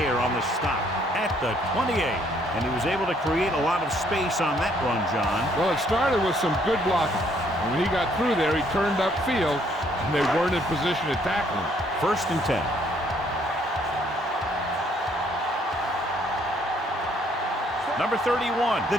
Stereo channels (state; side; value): normal; both; correlation 0.66